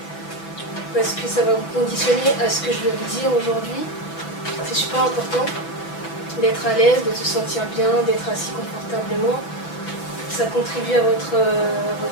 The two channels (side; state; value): right; late; 6.0 ms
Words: Parce que ça va vous conditionner à ce que je vais vous dire aujourd'hui. C'est super important d'être à l'aise, de se sentir bien, d'être assis confortablement. Ça contribue à votre